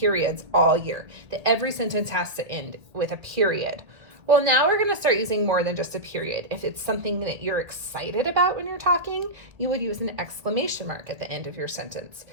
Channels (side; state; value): left; late; 1.8 ms